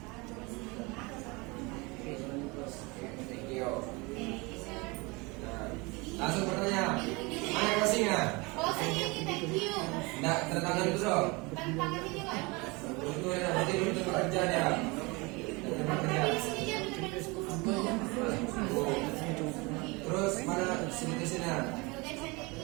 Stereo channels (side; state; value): left; quieter; 26.3 dB